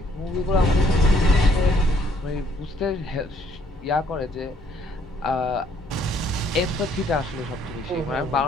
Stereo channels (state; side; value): normal; both; correlation 0.65